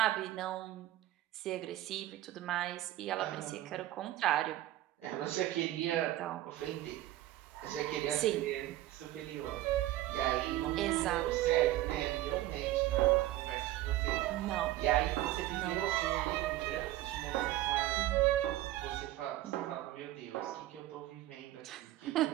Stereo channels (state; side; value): quieter; left; 15.2 dB